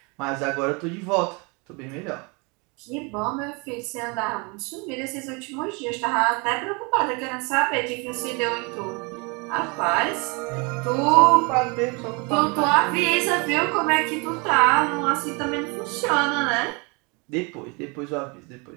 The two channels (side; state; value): left; quieter; 30.1 dB